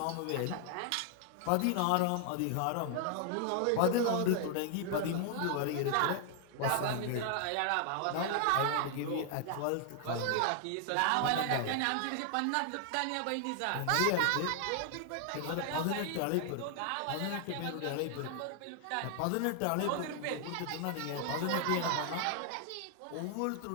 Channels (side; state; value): both; different; correlation 0.00